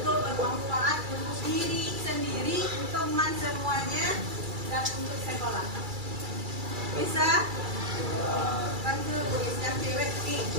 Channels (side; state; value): left; late; 2.3 ms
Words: bermanfaat untuk diri sendiri, teman semuanya, dan untuk sekolah. Bisa? Bantu yang cewek nih.